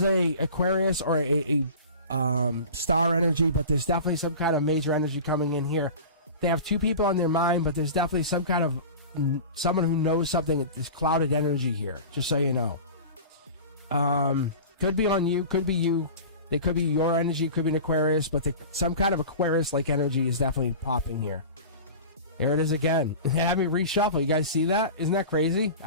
a Aquarius or a star energy, but there's definitely some kind of major energy coming in here. They have 2 people on their mind, but there's definitely some kind of someone who knows something. There's clouded energy here, just so you know. Could be on you, could be you. They could be your energy, could be an Aquarius, but some kind of Aquarius-like energy is definitely popping here. There it is again. It had me reshuffle. You guys see that? Isn't that crazy?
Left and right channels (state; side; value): inverted; both; correlation -0.35